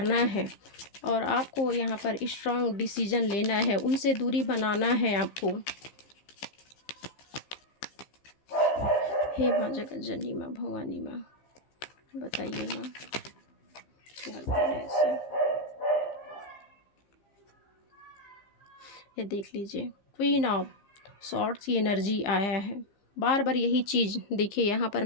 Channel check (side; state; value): right; late; 15 ms